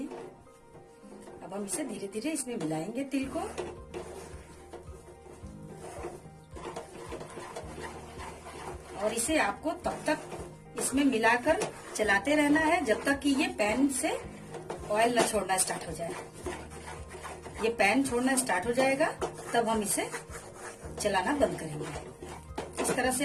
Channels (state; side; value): identical; both; correlation 1.00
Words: अब हम इसे धीरे धीरे इसमें मिलाएंगे तिल को। और इसे आपको तब तक इसमें मिलाकर चलाते रहना है जब तक कि ये पैन से ऑयल न छोड़ना स्टार्ट हो जाए। ये पैन छोड़ना स्टार्ट हो जाएगा तब हम इसे चलाना बंद करेंगे। इस तरह से